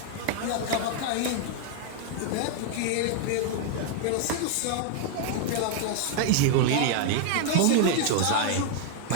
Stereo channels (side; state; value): both; different; correlation 0.00